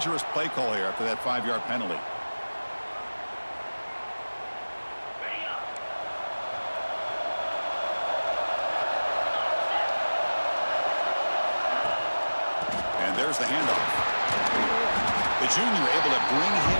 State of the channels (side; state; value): both; inverted; correlation -1.00